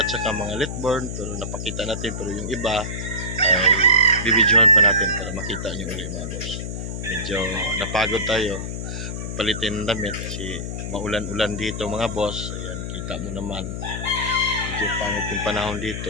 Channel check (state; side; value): noise; left; hum, 5 dB below the sound